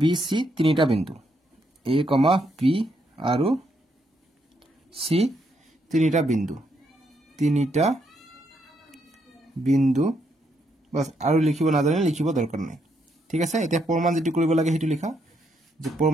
বি সি তিনিটা বিন্দু এ কমা পি আৰু সি তিনিটা বিন্দু বাস আৰু লিখিব নাজানিলে লিখিব দৰকাৰ নাই ঠিক আছে এতিয়া প্ৰমাণ যেটো কৰিব লাগে হেতু লিখা যে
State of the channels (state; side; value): normal; both; correlation 0.76